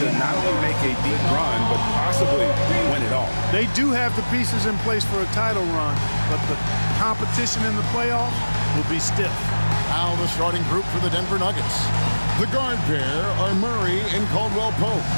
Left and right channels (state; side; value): inverted; both; correlation -1.00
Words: to not only make a deep run, but possibly win it all. They do have the pieces in place for a title run, but the competition in the playoffs will be stiff. Now the starting group for the Denver Nuggets. The guard pair are Murray and Caldwell Pope.